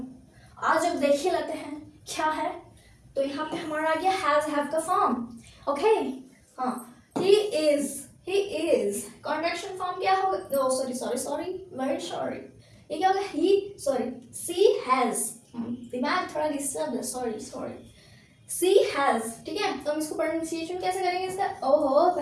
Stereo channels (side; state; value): both; identical; correlation 1.00